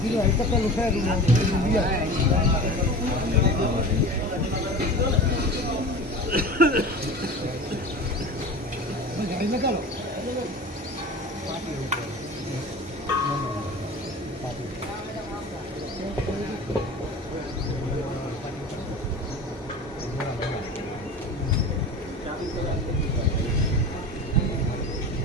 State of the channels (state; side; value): normal; both; correlation 0.34